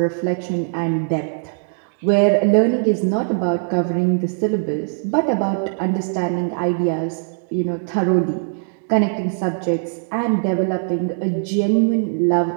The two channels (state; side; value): silent; left; digital silence